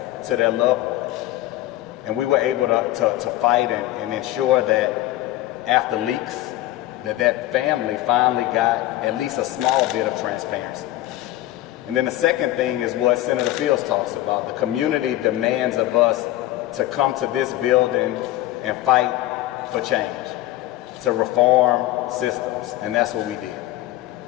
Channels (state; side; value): quieter; right; 15.8 dB